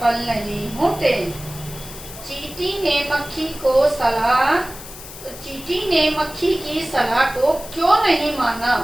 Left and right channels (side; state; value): left; noise; hiss, 14 dB below the sound